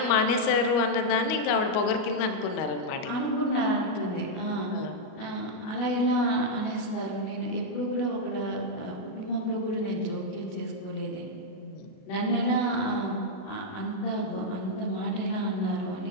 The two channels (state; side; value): late; right; 38 ms